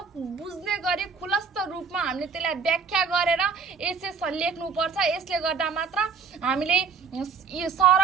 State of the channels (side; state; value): left; quieter; 5.6 dB